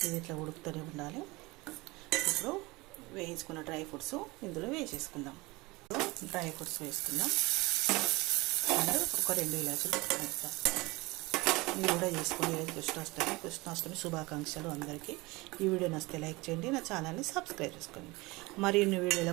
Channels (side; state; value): left; quieter; 22.9 dB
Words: ఇది ఇట్లా ఉడుకుతూనే ఉండాలి. ఇప్పుడు వేయించుకున్న డ్రై ఫ్రూట్స్ ఇందులో వేసేసుకుందాం. డ్రై ఫ్రూట్స్ వేసుకుందాం. అండ్ ఒక 2 ఇలాచీలు వేస్తాం. మీరు కూడా చేసుకోండి. కృష్ణాష్టమి శుభాకాంక్షలు అందరికీ. ఈ వీడియో నచ్చితే లైక్ చేయండి, నా ఛానల్ని సబ్స్క్రైబ్ చేసుకోండి. మరిన్ని